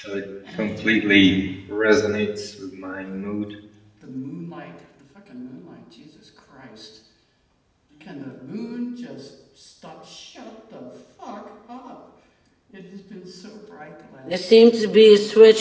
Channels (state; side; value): identical; both; correlation 1.00